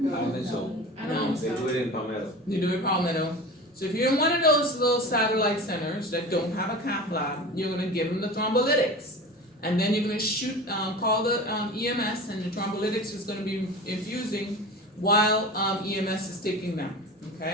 don't think so. I don't. They do it in Palmetto. You do it Palmetto. So if you're in one of those little satellite centers that don't have a cath lab, you're gonna give them the thrombolytics. And then you're gonna shoot, call the EMS, and the thrombolytics is gonna be infusing while EMS is taking them,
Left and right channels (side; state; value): both; normal; correlation 0.33